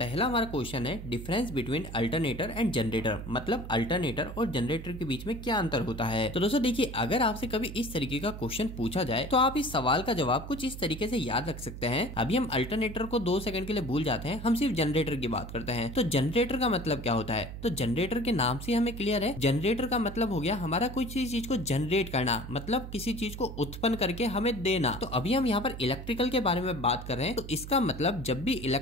हमारा क्वेश्चन है difference between alternator and generator, मतलब अल्टरनेटर और जनरेटर के बीच में क्या अंतर होता है। तो दोस्तों देखिए, अगर आपसे कभी इस तरीके का क्वेश्चन पूछा जाए तो आप इस सवाल का जवाब कुछ इस तरीके से याद रख सकते हैं। अभी हम अल्टरनेटर को 2 सेकंड के लिए भूल जाते हैं, हम सिर्फ जनरेटर की बात करते हैं। तो जनरेटर का मतलब क्या होता है, तो जनरेटर के नाम से हमें क्लियर है। जनरेटर का मतलब हो गया हमारा किसी चीज को जनरेट करना, मतलब किसी चीज को उत्पन्न करके हमें देना। तो अभी हम यहाँ पर इलेक्ट्रिकल के बारे में बात कर रहे हैं, तो इसका मतलब जब भी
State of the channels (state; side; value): noise; right; hum, 10 dB below the sound